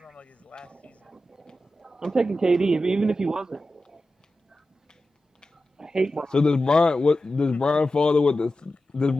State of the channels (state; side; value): normal; both; correlation 0.92